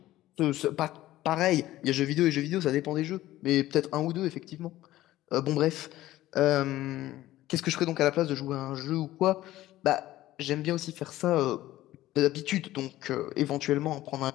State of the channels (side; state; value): right; quieter; 15.4 dB